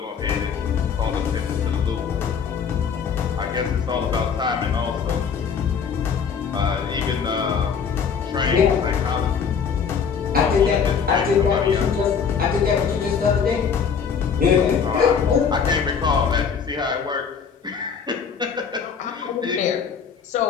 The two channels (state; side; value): quieter; right; 6.5 dB